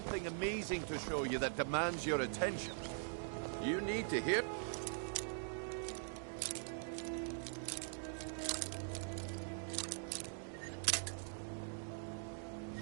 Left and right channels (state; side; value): silent; left; digital silence